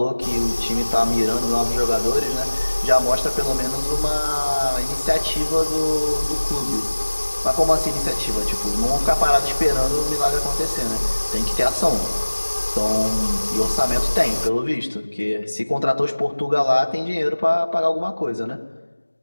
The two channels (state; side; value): inverted; both; correlation -1.00